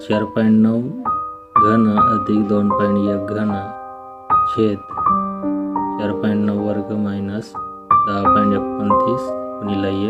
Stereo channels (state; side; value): identical; both; correlation 1.00